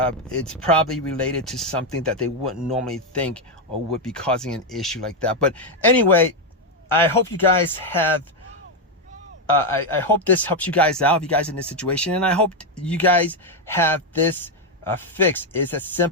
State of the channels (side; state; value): both; normal; correlation 0.04